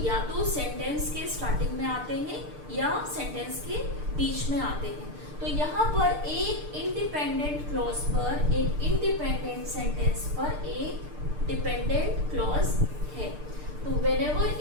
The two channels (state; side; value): late; left; 6.7 ms